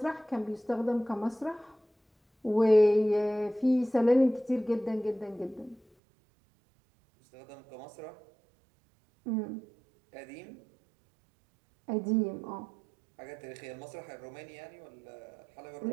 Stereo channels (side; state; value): left; drops out; at 5.8 s